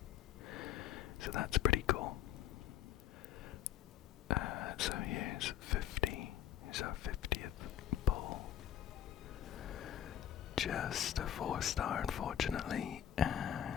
So that's pretty cool. So here's 50. Here's our 50th poll. Just a 4-star, unfortunately,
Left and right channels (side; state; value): right; quieter; 10.3 dB